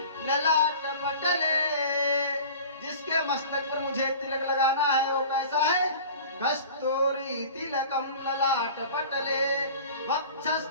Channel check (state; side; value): inverted; both; correlation -0.40